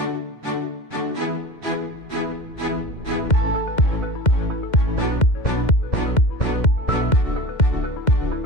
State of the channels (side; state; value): right; late; 2.1 ms